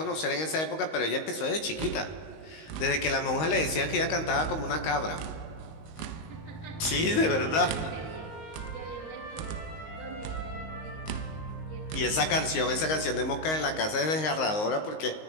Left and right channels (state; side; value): late; right; 19 ms